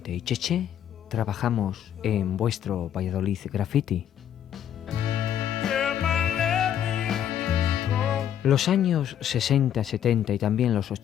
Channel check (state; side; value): quieter; right; 10.0 dB